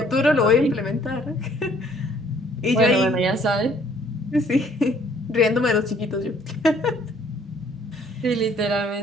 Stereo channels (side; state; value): both; normal; correlation 0.60